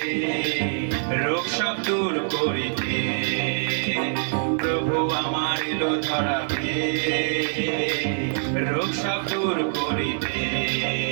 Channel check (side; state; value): left; silent; digital silence